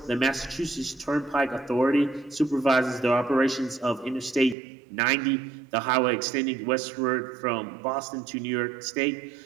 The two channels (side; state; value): left; drops out; at 4.5 s